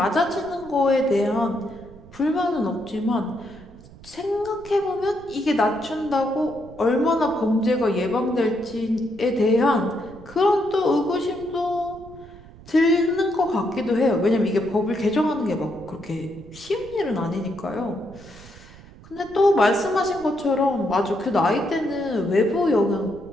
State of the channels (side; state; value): right; noise; rumble, 20 dB below the sound